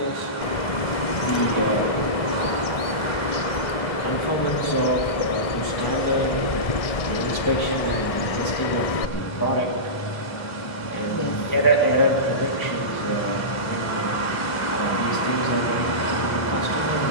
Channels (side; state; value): right; late; 1.6 ms